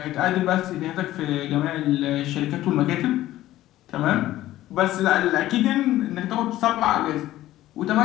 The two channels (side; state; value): right; quieter; 14.8 dB